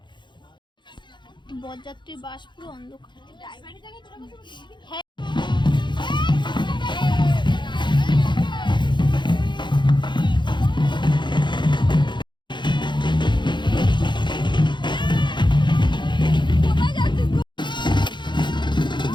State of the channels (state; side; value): late; right; 0.22 ms